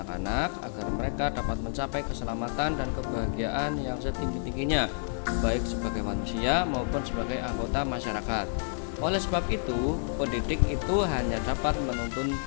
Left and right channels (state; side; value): silent; right; digital silence